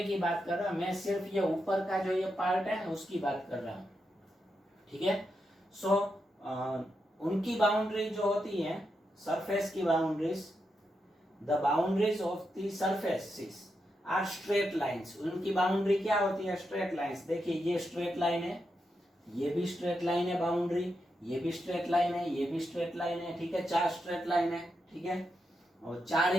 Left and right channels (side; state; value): both; normal; correlation 0.85